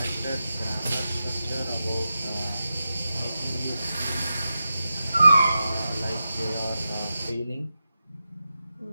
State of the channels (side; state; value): both; inverted; correlation -0.91